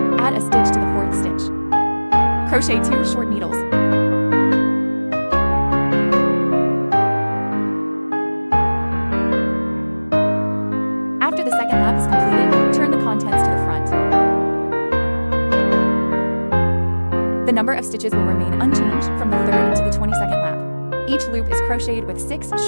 Add a stitch to the fourth stitch. Crochet 2 short needles. After the second lap is completed, turn the contents to the front. The number of stitches will remain unchanged from the 3rd to the 22nd lap. Each loop is crocheted with 6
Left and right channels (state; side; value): inverted; both; correlation -1.00